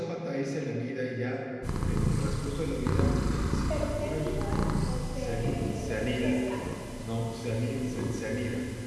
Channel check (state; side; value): identical; both; correlation 1.00